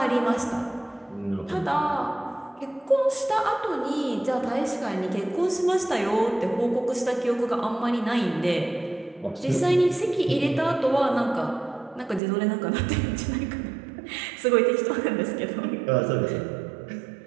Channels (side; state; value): left; drops out; at 12.2 s